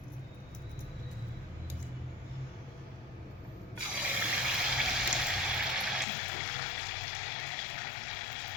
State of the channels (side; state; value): right; drops out; at 6.1 s